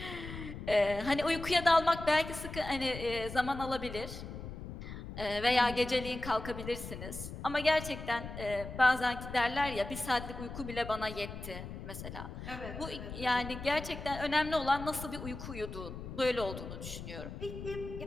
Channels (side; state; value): left; noise; rumble, 10 dB below the sound